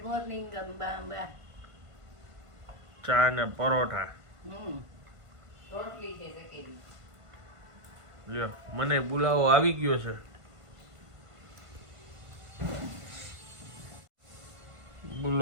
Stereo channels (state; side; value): late; left; 1.5 ms